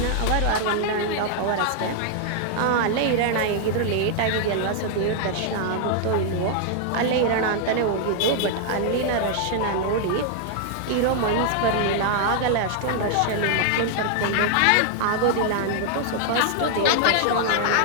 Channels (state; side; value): different; both; correlation 0.00